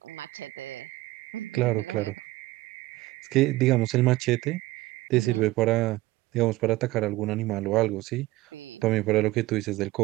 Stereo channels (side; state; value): left; quieter; 18.5 dB